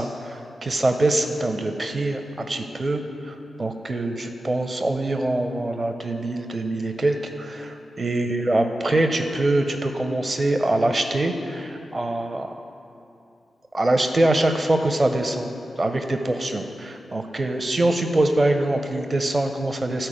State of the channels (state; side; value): normal; both; correlation 0.93